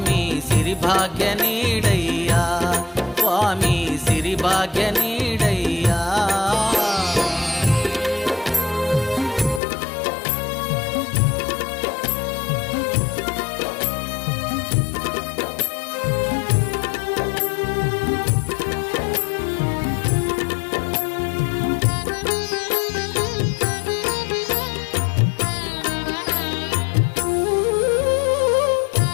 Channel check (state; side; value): drops out; right; at 9.6 s